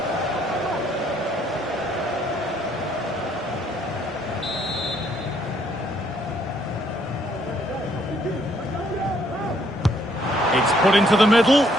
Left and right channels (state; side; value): normal; both; correlation 0.67